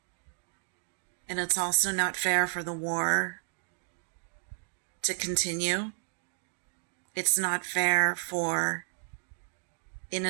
And it's also not fair for the war to continue. It's not fair for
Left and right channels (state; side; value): silent; left; digital silence